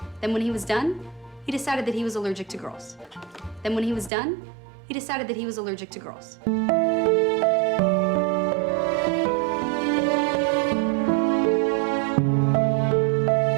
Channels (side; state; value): left; drops out; at 4.1 s